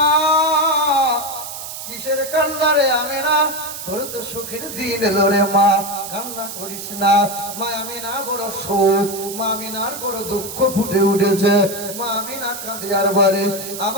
কিসের কান্না রে আমিনা? তোর তো সুখের দিন এলো রে মা, কান্না করিস না। মা আমিনা বড় শোক, মা আমিনার বড় দুঃখ ফুটে উঠেছে। মা আমিনা কাঁদে আর বলে,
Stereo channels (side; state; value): right; noise; hiss, 9 dB below the sound